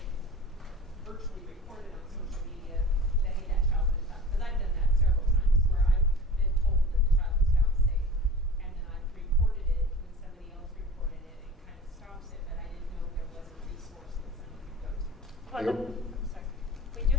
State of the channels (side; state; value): both; normal; correlation 0.39